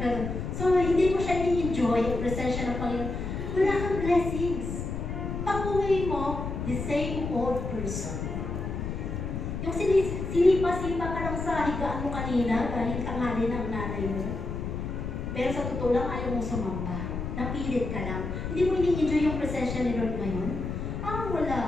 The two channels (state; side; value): noise; left; rumble, 4 dB below the sound